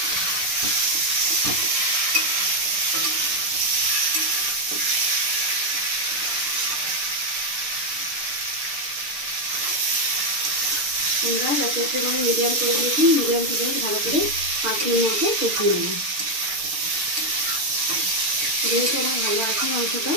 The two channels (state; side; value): late; left; 6.7 ms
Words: আমরা গ্যাসের মানে মিডিয়াম করে দিয়েছি। মিডিয়াম থেকে ভালো করে 5 মিনিট মতো কষিয়ে নেব। যেহেতু আমার ভালো আছে মাংসটা,